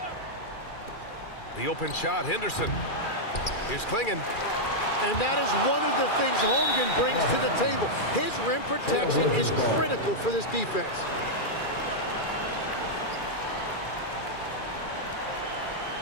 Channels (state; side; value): late; right; 2.4 ms